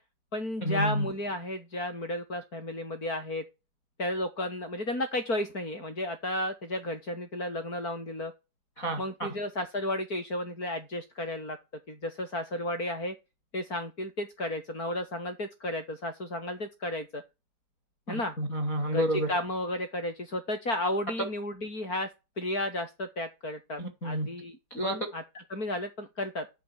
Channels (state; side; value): late; right; 4.5 ms